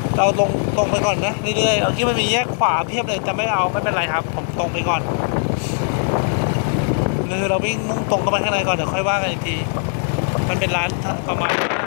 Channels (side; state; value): right; silent; 63 dB below the other